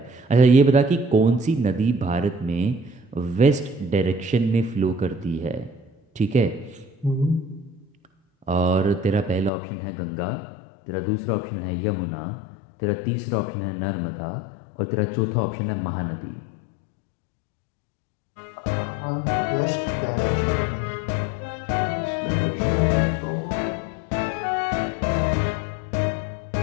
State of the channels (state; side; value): drops out; right; at 9.5 s